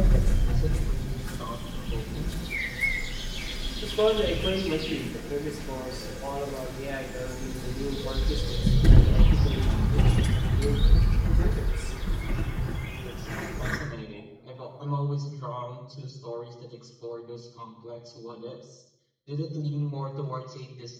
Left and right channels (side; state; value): both; identical; correlation 1.00